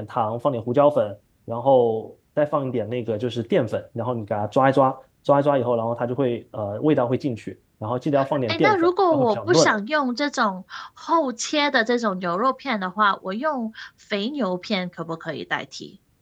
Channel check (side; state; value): both; identical; correlation 1.00